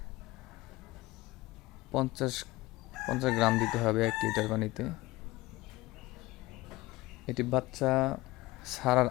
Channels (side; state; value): right; quieter; 19.6 dB